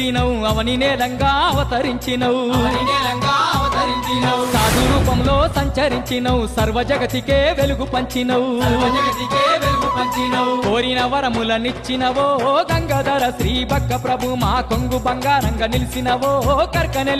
అవని నేలంగా అవతరించినవు సాధు రూపంలో సంచరించినవు సర్వ జగతికే వెలుగు పంచినవు కోరిన వరములనిచ్చినవో గంగాధర శ్రీ బక్క ప్రభు మా కొంగు బంగారంగా నిలిచినవో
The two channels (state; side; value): identical; both; correlation 1.00